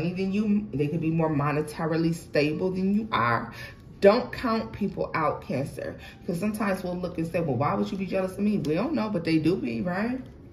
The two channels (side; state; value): both; identical; correlation 1.00